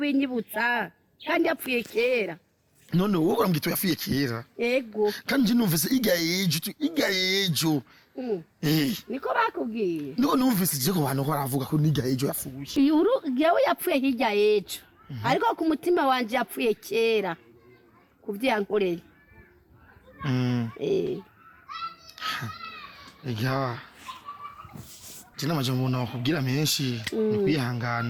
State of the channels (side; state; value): both; identical; correlation 1.00